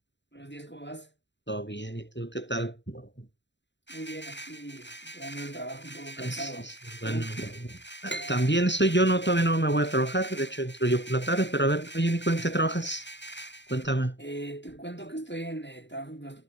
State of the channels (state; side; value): late; right; 0.52 ms